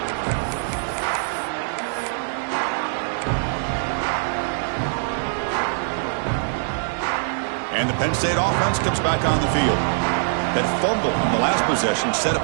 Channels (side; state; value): left; silent; digital silence